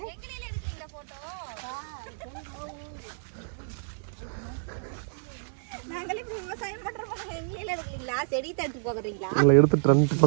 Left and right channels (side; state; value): left; silent; digital silence